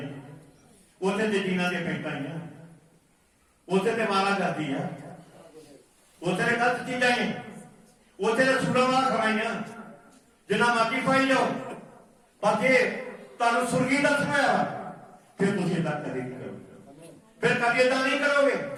ਉੱਥੇ ਤੇ ਜੀਨਾਂ ਦੀਆਂ ਪੈਂਟਾਂ ਆਈਆਂ, ਉੱਥੇ ਤੇ ਮਾਰਾ ਕਰਦੀ ਆ, ਉੱਥੇ ਤੇ ਗਲਤ ਚੀਜ਼ਾਂ ਨੇ, ਉੱਥੇ ਤੇ ਸੁਣਾਵਾ ਖਵਾਈਆਂ, ਜਿੰਨਾ ਮਰਜ਼ੀ ਖਵਾਈ ਜਾਓ। ਪਰ ਜੇ ਤੁਹਾਨੂੰ ਸੁਰਗੀ ਦਰਸ਼ਨ ਹੋਇਆ ਫਿਰ ਤੁਸੀਂ ਏਦਾਂ ਕਦੇ ਨਹੀਂ ਕਰੋਗੇ, ਫਿਰ ਕਦੇ ਏਦਾਂ ਨਹੀਂ ਕਰੋਗੇ,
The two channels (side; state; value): both; identical; correlation 1.00